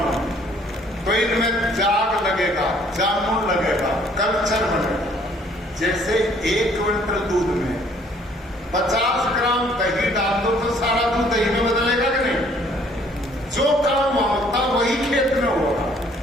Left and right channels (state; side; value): normal; both; correlation 0.60